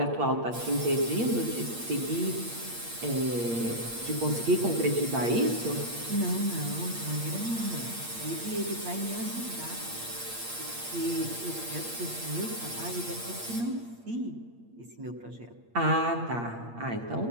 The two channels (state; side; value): late; left; 8.6 ms